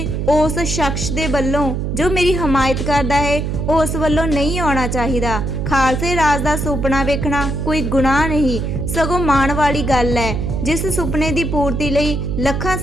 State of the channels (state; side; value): noise; right; hum, 2 dB below the sound